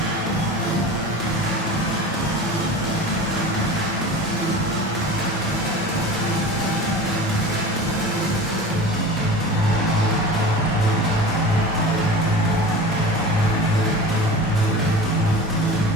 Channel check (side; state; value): both; normal; correlation 0.35